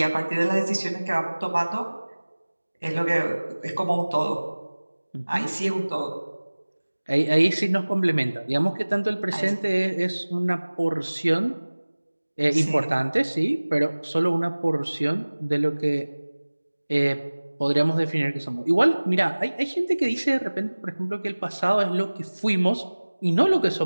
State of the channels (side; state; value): both; inverted; correlation -1.00